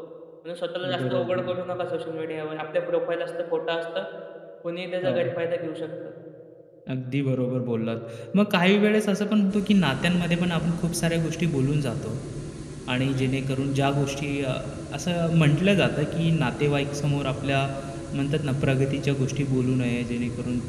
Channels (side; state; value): both; identical; correlation 1.00